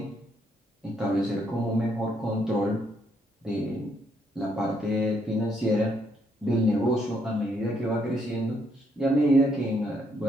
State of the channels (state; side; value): normal; both; correlation 0.73